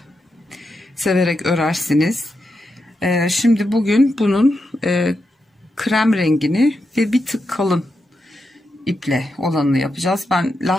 Severek örersiniz. Şimdi bugün bunun krem rengini ve bir tık kalın iple olanını yapacağız. Ben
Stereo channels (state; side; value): normal; both; correlation 0.86